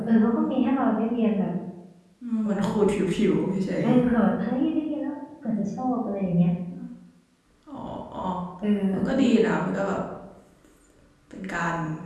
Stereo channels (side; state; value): both; identical; correlation 1.00